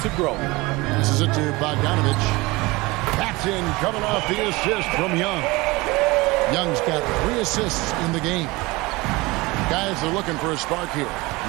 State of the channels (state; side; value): quieter; left; 22.5 dB